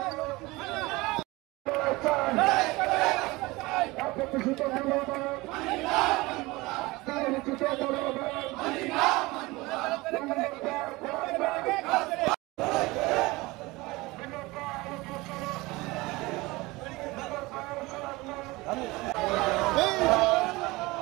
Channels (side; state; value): left; quieter; 21.9 dB